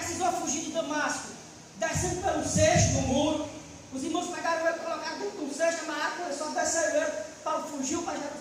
fugir de Damasco, descendo pelo cesto no muro. Os irmãos pegaram ele, colocaram dentro de um cesto, amarraram, começou a descer ele. Paulo fugiu para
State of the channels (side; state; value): both; identical; correlation 1.00